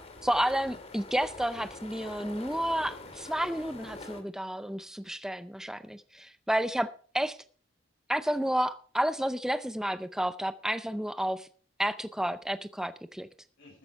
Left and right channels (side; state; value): both; normal; correlation 0.95